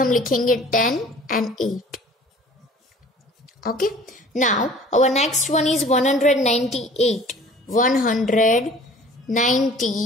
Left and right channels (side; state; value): both; normal; correlation 0.48